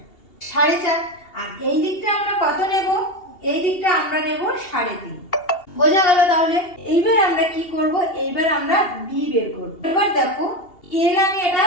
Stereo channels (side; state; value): right; late; 2.7 ms